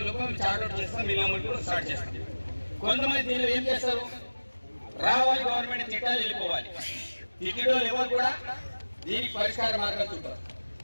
లోపల మేము చార్ట్అవుట్ చేస్తాం, మీ అమలు కూడా స్టార్ట్ చేస్తాం. కొంతమంది దీనిలో ఏం చేస్తారు, రావాలి గవర్నమెంట్ తిట్టాలి వెళ్ళిపోవాలి. తిట్టడం ఎవరు కూడా దీనికి పరిష్కార మార్గాలు చూపారు.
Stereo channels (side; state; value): both; inverted; correlation -1.00